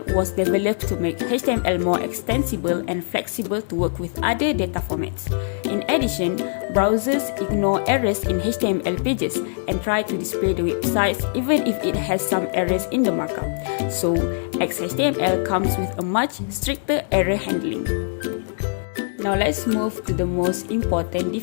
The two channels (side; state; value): right; silent; digital silence